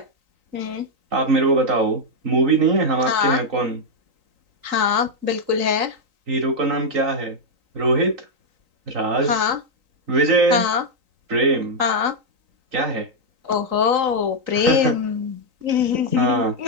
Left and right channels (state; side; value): late; left; 3.9 ms